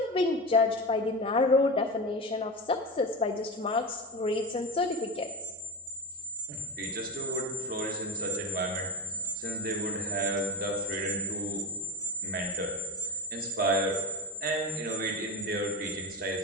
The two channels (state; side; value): normal; both; correlation 0.21